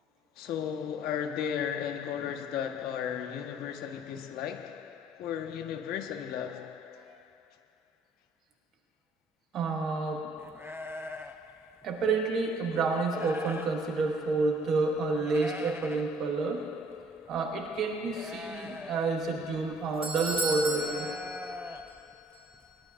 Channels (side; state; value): both; normal; correlation 0.59